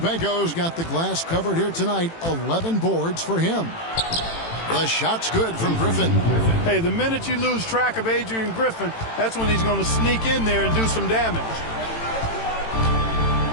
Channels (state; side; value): late; right; 18 ms